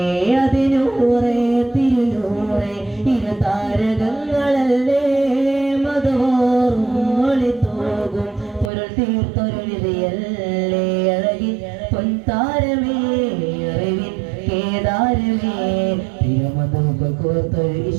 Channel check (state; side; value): drops out; left; at 8.7 s